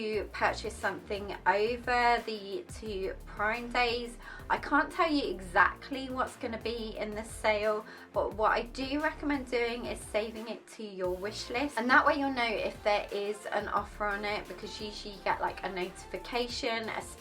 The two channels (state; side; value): identical; both; correlation 1.00